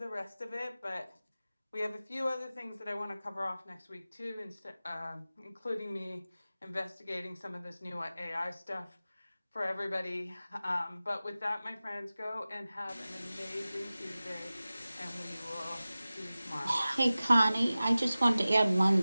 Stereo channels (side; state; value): both; inverted; correlation -0.97